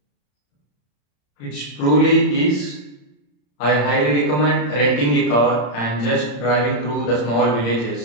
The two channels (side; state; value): right; late; 34 ms